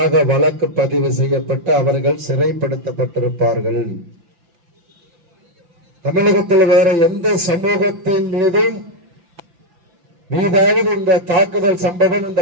வழக்கு பதிவு செய்யப்பட்டு அவர்கள் சிறைப்படுத்தப்பட்டிருப்பார்கள். தமிழகத்தில் வேற எந்த சமூகத்தின் மீதும் மீதாவது இந்த தாக்குதல் சம்பவம், இந்த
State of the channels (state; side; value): late; left; 5.8 ms